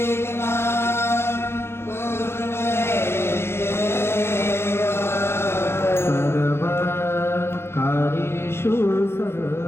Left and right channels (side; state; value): right; late; 0.12 ms